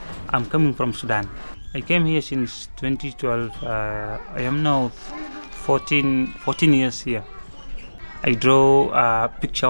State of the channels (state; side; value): inverted; both; correlation -1.00